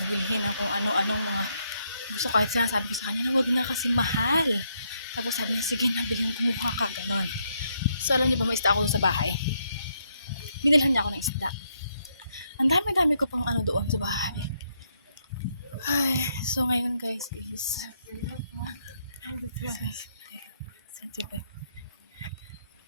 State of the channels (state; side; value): inverted; both; correlation -0.76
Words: bilhin ng kung ano-anong mga gusto. Kahit sinasabi ko sa kanya na wag na kasi mahal. Tapos sabi niya, sige na, bilhin, kumuha ka, ganon. So alam niyo ba, may isda ako sa bahay. Binilhan niya ako ng isda. Ang dami-dami ko pang ano doon sa bahay. Ay, so ngayon guys is sensitive.